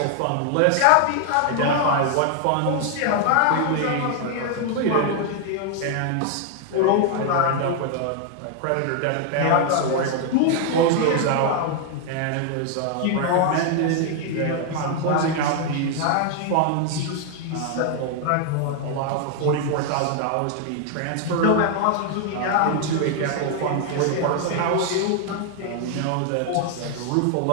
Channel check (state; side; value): different; both; correlation 0.00